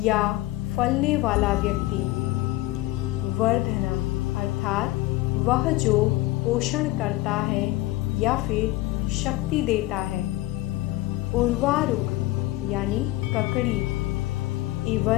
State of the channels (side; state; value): right; quieter; 17.8 dB